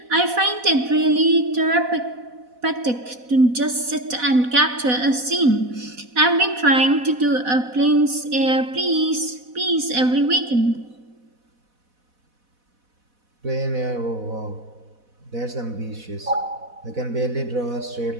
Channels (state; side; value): late; left; 4.1 ms